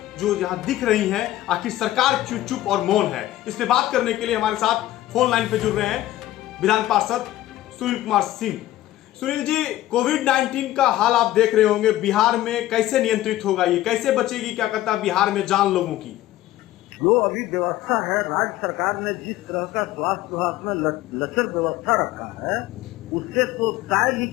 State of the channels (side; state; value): right; quieter; 14.8 dB